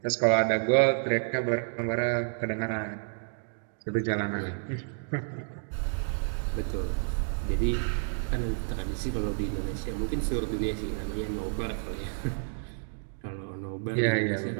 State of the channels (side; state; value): left; silent; digital silence